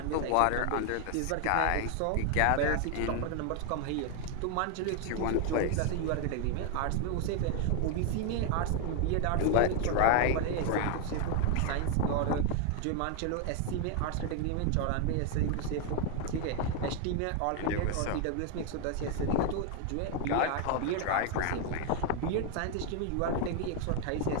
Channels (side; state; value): both; different; correlation 0.01